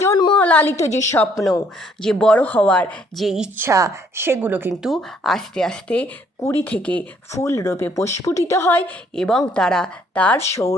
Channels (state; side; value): normal; both; correlation 0.65